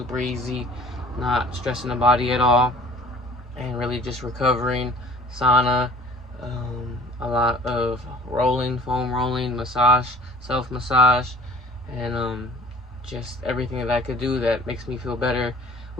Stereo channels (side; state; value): both; normal; correlation 0.50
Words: easy, not stressing the body at all, and really just recovering, sauna, a lot of rolling, foam rolling, massage, self-massage, and just everything that I could do that makes me feel better